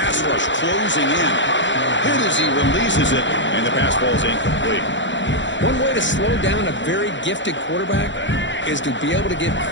rush closing in. Hit as he releases it, and the pass ball is incomplete. One way to slow down a very gifted quarterback is to be able to get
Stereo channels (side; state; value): right; late; 0.54 ms